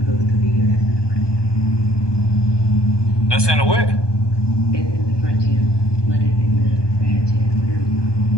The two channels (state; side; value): late; right; 1.2 ms